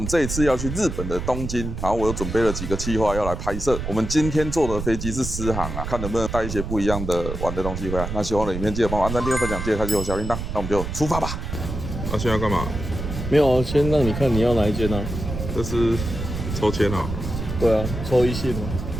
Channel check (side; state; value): right; noise; rumble, 5 dB below the sound